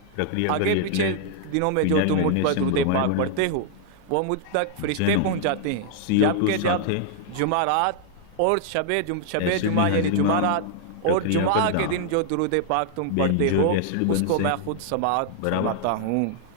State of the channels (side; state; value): both; different; correlation 0.00